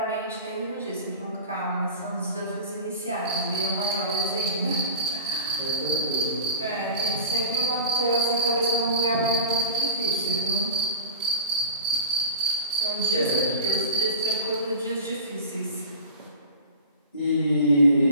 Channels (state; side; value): inverted; both; correlation -0.36